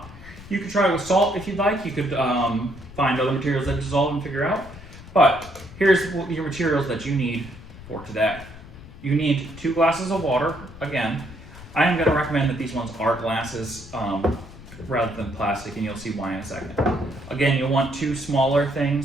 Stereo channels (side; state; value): left; noise; rumble, 17 dB below the sound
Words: You could try it with salt if you'd like. You could find other materials that dissolve and figure out. But here's your materials that you need for today. You need 2 glasses of water. Again, I am going to recommend that these ones are glasses rather than plastic, and you'll see why in a second. Again, you'll want 2 smaller